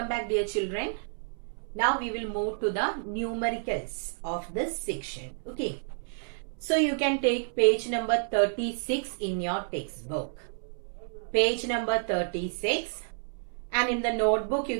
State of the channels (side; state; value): left; silent; 58 dB below the other